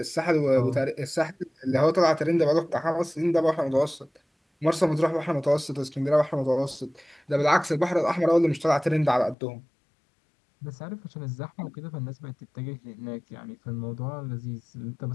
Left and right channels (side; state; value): right; drops out; at 9.3 s